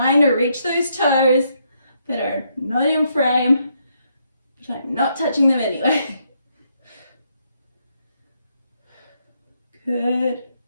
to reach those toes that are not in frame, but I'm not touching them anyway. Good.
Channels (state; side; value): inverted; both; correlation -0.76